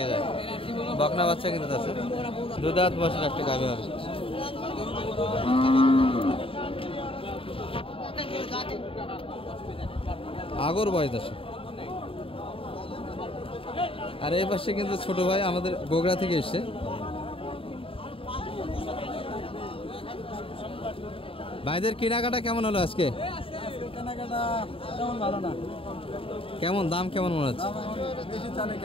যায়। বকনা বাচ্চা কিন্তু আছে, 2 দাঁত বয়সের একটা গাভী হবে। আগর বয়স দর্শক। আর এই পাশে কিন্তু ছোট ভাই আমাদের বগুড়া থেকে এসছে। ভাইদের কেনাকাটা কেমন হলো আজকে? কেমন দাম কেমন মনে হচ্ছে?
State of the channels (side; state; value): right; late; 0.27 ms